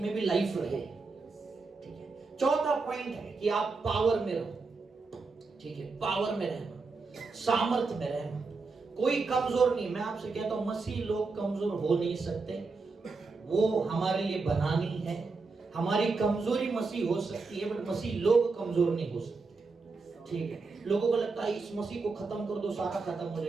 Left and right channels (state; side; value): quieter; left; 4.1 dB